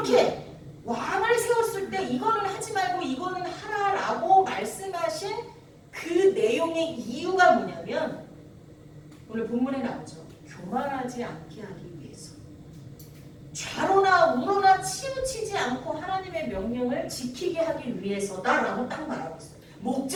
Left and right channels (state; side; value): identical; both; correlation 1.00